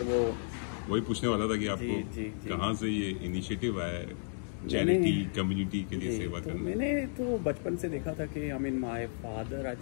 वो वही पूछने वाला था कि आपको जी. कहाँ से ये इनिशिएटिव आया चैरिटी कम्युनिटी के लिए सेवा तो करना. मैंने तो बचपन से देखा था कि I mean my father I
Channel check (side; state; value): right; silent; digital silence